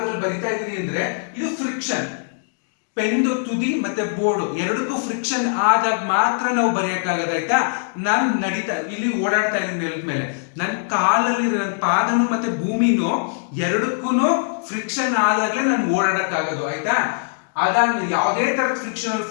ಅಲ್ಲಿ ಬರಿತಾ ಇದೀನಿ ಅಂದ್ರೆ ಇದು ಫ್ರಿಕ್ಷನ್. ಪೆನ್ದು ತುದಿ ಮತ್ತೆ ಬೋರ್ಡ್ ಎರಡಕ್ಕೂ ಫ್ರಿಕ್ಷನ್ ಆದಾಗ ಮಾತ್ರ ನಾವು ಬರೆಯಕ್ಕಾಗದ ಆಯ್ತಾ. ನಾನು ಇಲ್ಲಿ ಓಡಾಡ್ತಾ ಇದ್ದೀನಿ ನೆಲದ ಮೇಲೆ, ನನ್ನ ಕಾಲಲ್ಲಿ ನನ್ನ ಪಾದನು ಮತ್ತೆ ಭೂಮಿನೂ ಎರಡಕ್ಕೂ ಫ್ರಿಕ್ಷನ್ ಆದಾಗ್ಲೇ ನಾನು ಓಡಾಡಕ್ಕಾಗೋದು ಆಯ್ತಾ. ಅದಾದ್ಮೇಲೆ ಯಾವುದೇ ತರದ ಫ್ರಿಕ್ಷನಲ್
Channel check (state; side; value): silent; right; digital silence